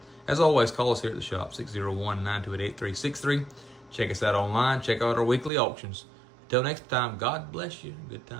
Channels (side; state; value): left; drops out; at 5.5 s